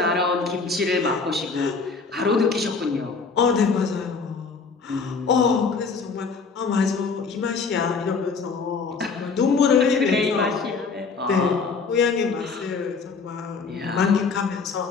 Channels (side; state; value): right; quieter; 4.9 dB